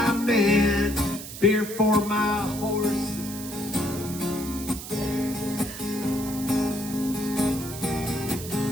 men, beer for my horse.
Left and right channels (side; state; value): right; noise; hiss, 11 dB below the sound